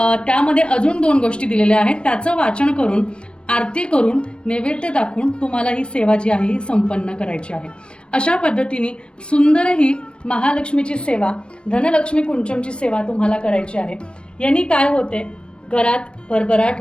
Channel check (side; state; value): right; late; 0.057 ms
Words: त्यामध्ये अजून 2 गोष्टी दिलेल्या आहेत, त्याचं वाचन करून, आरती करून, नैवेद्य दाखवून तुम्हाला ही सेवा जी आहे ही संपन्न करायची आहे. अशा पद्धतीने सुंदर ही महालक्ष्मीची सेवा, धनलक्ष्मी कुंचमची सेवा तुम्हाला करायची आहे. यांनी काय होते, घरात भरभराट